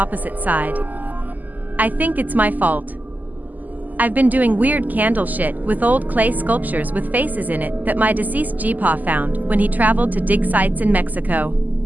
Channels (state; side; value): late; left; 0.082 ms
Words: side. I think it's my fault. I've been doing weird candle shit with old clay sculptures with faces in it that my deceased Gpa found when he traveled to dig sites in Mexico.